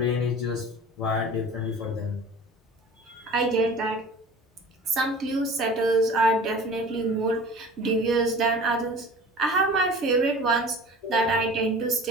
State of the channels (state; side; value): normal; both; correlation 0.41